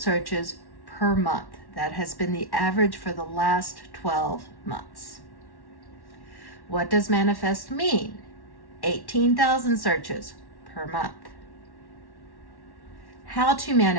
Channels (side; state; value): right; late; 1.1 ms